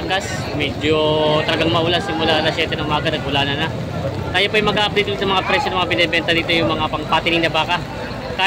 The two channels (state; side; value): identical; both; correlation 1.00